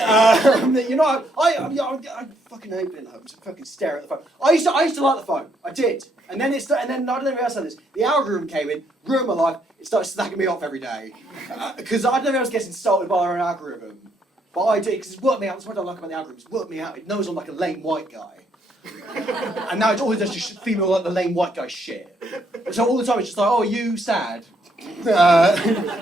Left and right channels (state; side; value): normal; both; correlation 0.72